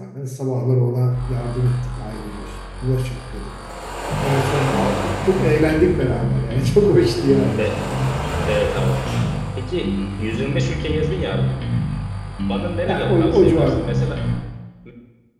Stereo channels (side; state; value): both; identical; correlation 1.00